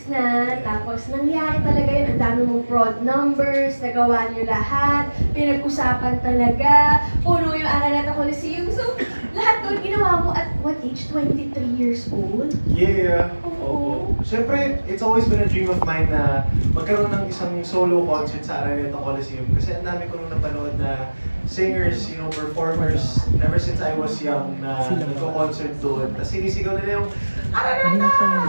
na, tapos nangyari talaga yun, ang dami mong fraud numbers, nagawa niyo lahat, pinag-usapan talaga, puno yung Araneta Coliseum. So, lahat doon ginawa mo at what age? 23 years old? Yeah. Oo. Siyempre, it's always been a dream of mine na magkaroon ng isang solo concert sa Araneta Coliseum. Kasi ang dami ko nung napanood na singers, performers, ever since I was young na nagko-concert doon. Tapos sinisigaw nila yung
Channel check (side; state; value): both; inverted; correlation -1.00